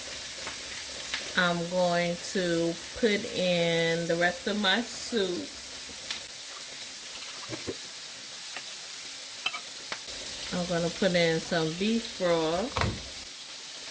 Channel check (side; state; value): both; identical; correlation 1.00